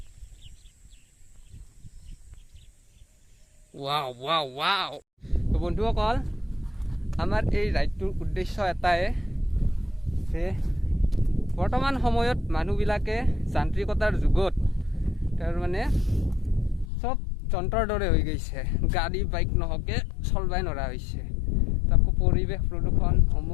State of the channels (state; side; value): drops out; right; at 16.9 s